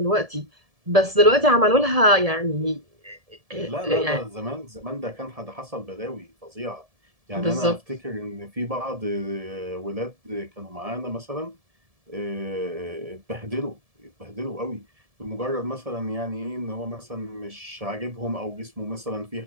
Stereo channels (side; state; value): left; late; 1.7 ms